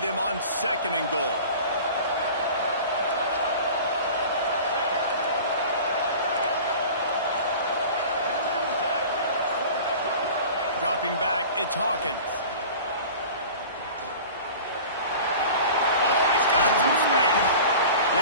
on 2nd and goal? Dropping back, it's Hawkins. Oh, he's got some space.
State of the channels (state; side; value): inverted; both; correlation -0.39